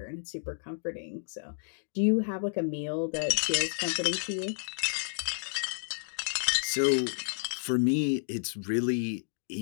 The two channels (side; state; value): right; silent; digital silence